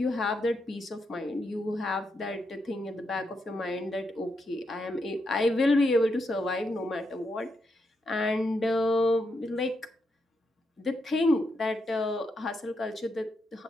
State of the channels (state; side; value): normal; both; correlation 0.82